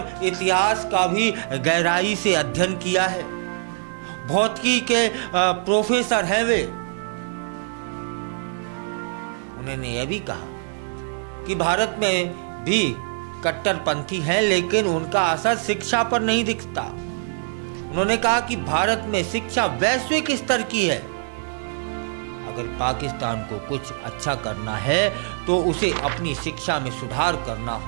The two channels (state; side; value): silent; left; 58 dB below the other